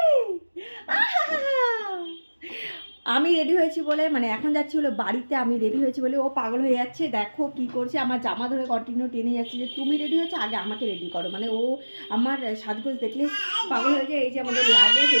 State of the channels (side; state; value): both; inverted; correlation -1.00